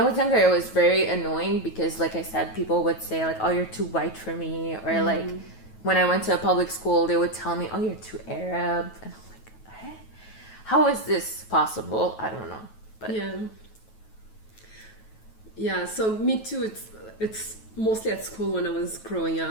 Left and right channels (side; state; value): right; late; 9.2 ms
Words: was younger, it was very annoying because, like I said, people would say like, "Oh, you're too white for me," or like, when I went to a public school, they would tell me, "Oh, you're too Arab," and I'm like, "Hey, how is this possible?" I don't know, but yeah. So me too. It's mostly at school when I was growing